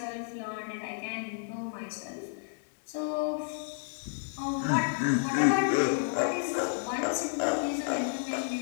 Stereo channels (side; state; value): right; silent; digital silence